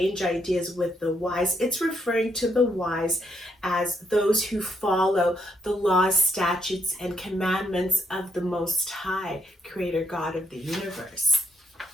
ideas with the wise, it's referring to the wise as those who follow the laws, statutes, and commandments of the Most High, Creator God of the universe.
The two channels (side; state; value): both; normal; correlation 0.76